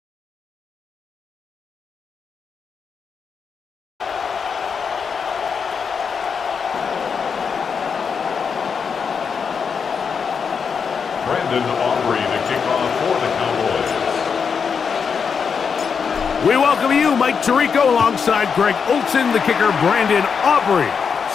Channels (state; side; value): quieter; right; 6.2 dB